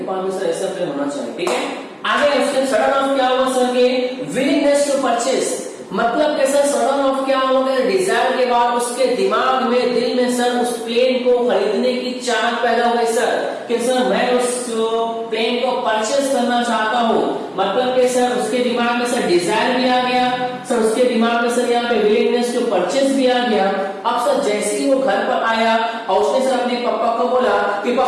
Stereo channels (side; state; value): both; identical; correlation 1.00